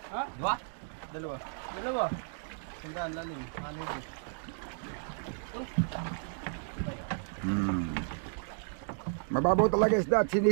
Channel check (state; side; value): silent; left; digital silence